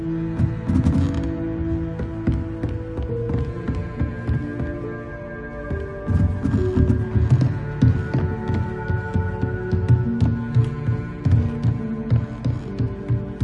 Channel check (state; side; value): identical; both; correlation 1.00